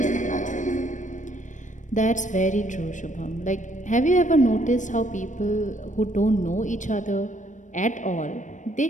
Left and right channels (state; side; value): late; right; 0.36 ms